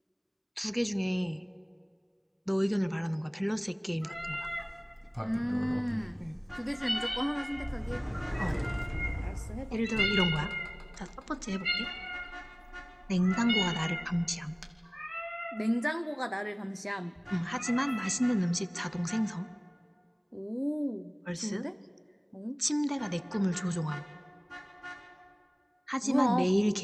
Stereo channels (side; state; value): both; identical; correlation 1.00